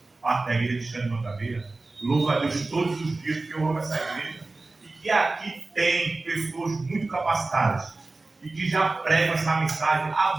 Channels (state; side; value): quieter; left; 3.4 dB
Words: parte da igreja de Xande Mangabeira. Louvo a Deus todos os dias, porque eu amo essa igreja. E que aqui tem pessoas muito capacitadas e que já pregam essa mensagem